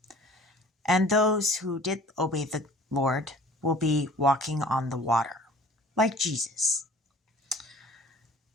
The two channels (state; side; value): normal; both; correlation 0.49